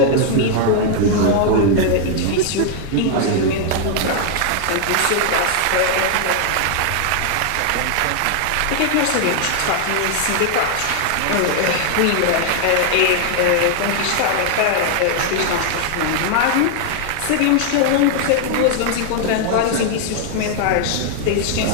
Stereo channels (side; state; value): both; different; correlation 0.00